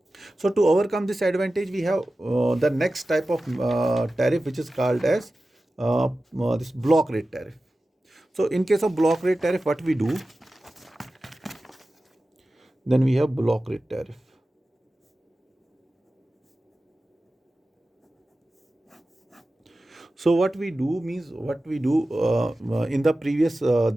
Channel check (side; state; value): both; normal; correlation 0.95